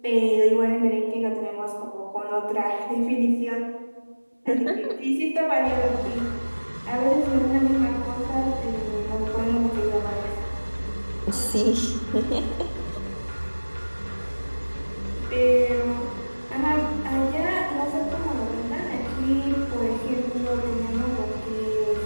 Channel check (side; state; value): both; inverted; correlation -1.00